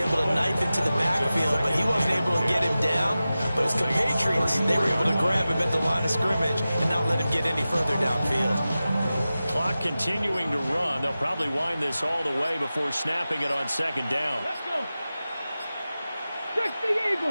to knife into the backfield, but he wasn't able to get him down. But his compatriots, they were able to grab him at the line of scrimmage and not let him get any further downfield. Clock clock continuing to run. They'll probably wind this all the way before snapping it on second down. Let's go. 60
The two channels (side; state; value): both; inverted; correlation -0.95